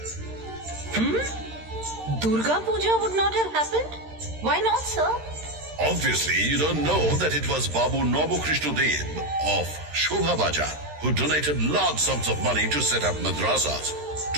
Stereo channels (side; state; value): left; late; 13 ms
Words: Durga Puja would not have happened? Why not, sir? Obviously, you don't know that it was Babu Nobu Krishna Dev of Shobha Bajar who donated large sums of money to set up madrasas,